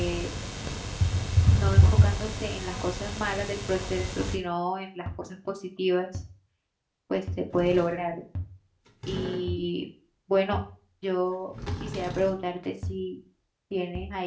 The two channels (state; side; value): identical; both; correlation 1.00